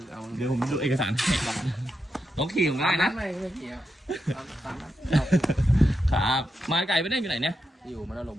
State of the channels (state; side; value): normal; both; correlation 0.86